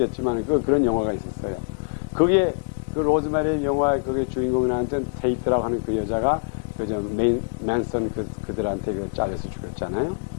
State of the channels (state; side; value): silent; right; digital silence